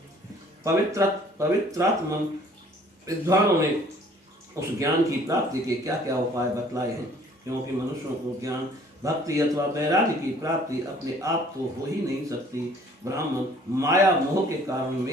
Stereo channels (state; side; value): normal; both; correlation 0.55